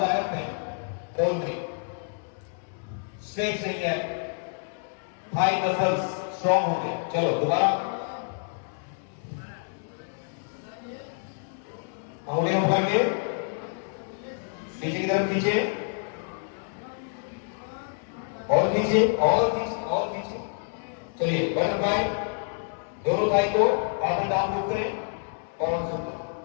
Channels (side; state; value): right; silent; 59 dB below the other